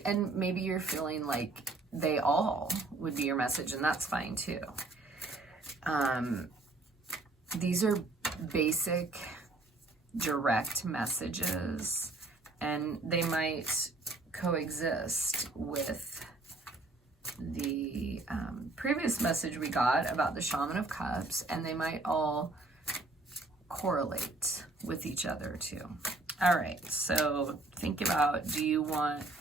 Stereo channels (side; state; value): left; quieter; 3.1 dB